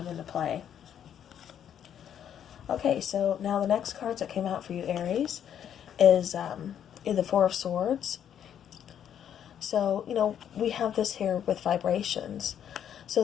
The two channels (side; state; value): right; quieter; 9.4 dB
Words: into play. Okay, so now the next cards that came out for you, Aries, is the Four of Swords. So, we have this here with vibrations. So